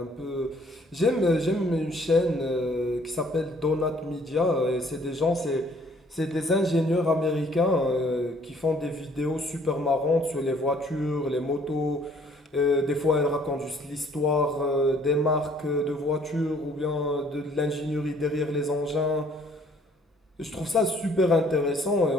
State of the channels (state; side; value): normal; both; correlation 0.60